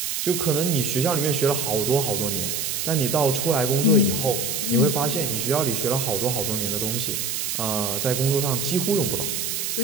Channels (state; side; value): noise; right; hiss, 2 dB below the sound